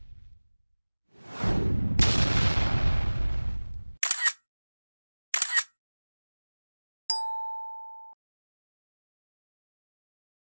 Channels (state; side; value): inverted; both; correlation -1.00